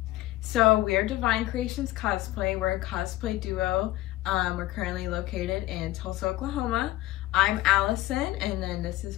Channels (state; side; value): quieter; right; 16.8 dB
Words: So we are Divine Creations Cosplay. We're a cosplay duo. We're currently located in Tulsa, Oklahoma. I'm Allison, and then this